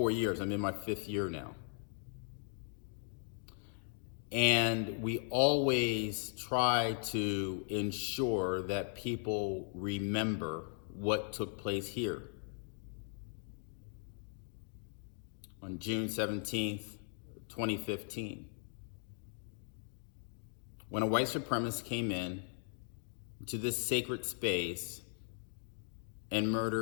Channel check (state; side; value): silent; right; 52 dB below the other